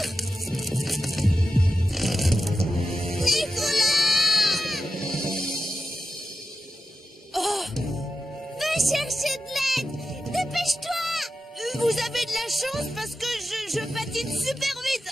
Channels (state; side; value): normal; both; correlation 0.92